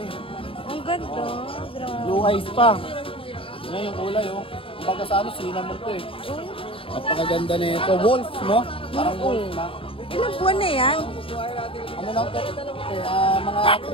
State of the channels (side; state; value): right; late; 0.26 ms